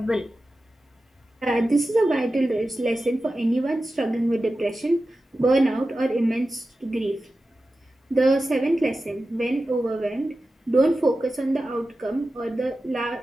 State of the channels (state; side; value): normal; both; correlation 0.93